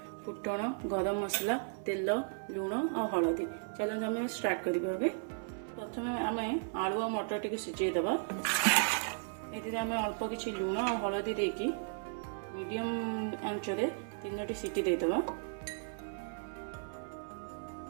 फुटण गरम मसला तेल लुण और हलदी। चलते आम स्टार्ट करें। प्रथम आम आलू और मटर टी सिझेदबा। ये आम अल्प किसी लुण और हलदी देकी मीडियम आंचरे 3टी सीटी देदबा।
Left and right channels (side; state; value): left; silent; 54 dB below the other